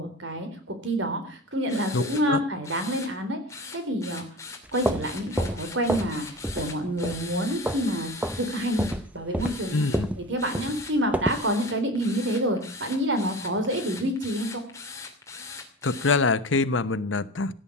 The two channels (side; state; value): both; normal; correlation 0.34